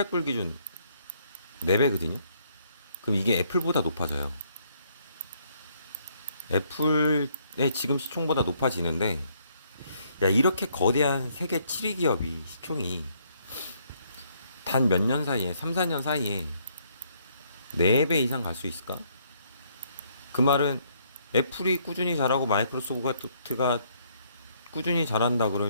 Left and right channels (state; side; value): inverted; both; correlation -0.68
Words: 기준 4배거든요. 그럼 이게 애플보다 높아져요. 애플의 지금 시총보다 높아지는데, 야, 이렇게 거대한 세계 7위 기업이 시총이 단 몇 년 사이에, 3, 4년 사이에 4배 이상 갈 수 있을까? 그 말은 애플이 꾸준히 잘하고 마이크로소프트가 꾸준히 잘한다